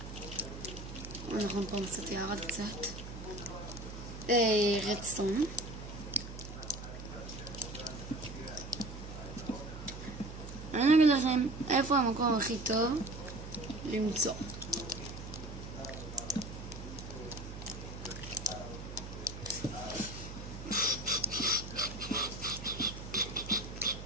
אנחנו פה קצת ירד קצת. רדסטון. אני אגיד לכם איפה המקום הכי טוב למצוא.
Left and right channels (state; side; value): noise; right; hum, 10 dB below the sound